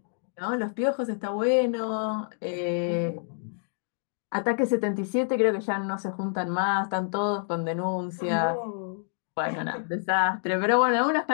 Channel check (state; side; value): silent; right; digital silence